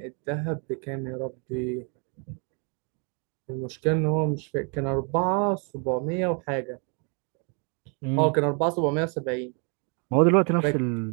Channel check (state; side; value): quieter; left; 37.1 dB